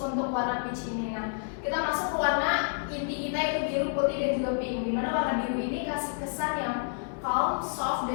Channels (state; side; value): silent; right; digital silence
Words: warna peach ini. Nah, kita masuk ke warna inti kita yaitu biru, putih dan juga pink. Dimana warna biru ini kasih kesan yang calm, soft